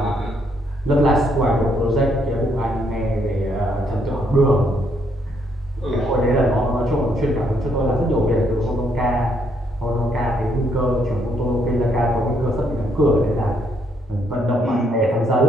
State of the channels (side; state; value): both; normal; correlation 0.72